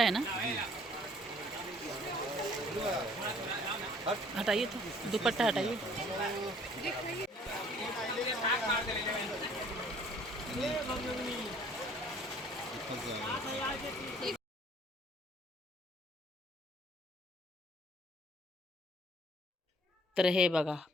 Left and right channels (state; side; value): normal; both; correlation 0.57